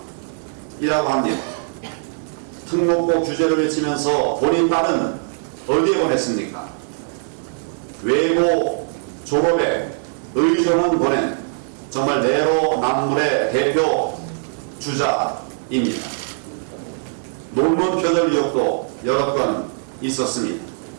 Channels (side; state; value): left; silent; 65 dB below the other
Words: 합니다. 특목고 규제를 외치면서 본인 딸은 어디에 보냈습니까? 외고 졸업에 의정원 보낸 정말 내로남불의 대표 주자입니다. 논문 표절 의혹도 여러 건 있었습니다.